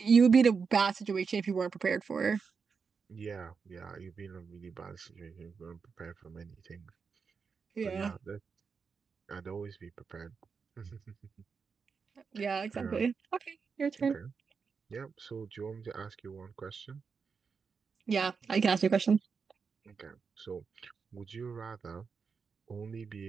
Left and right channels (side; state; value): left; quieter; 5.5 dB